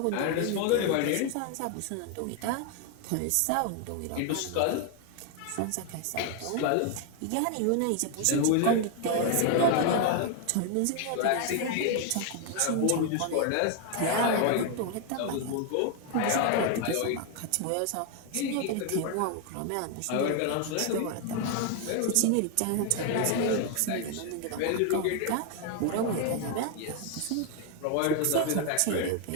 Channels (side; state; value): both; different; correlation 0.00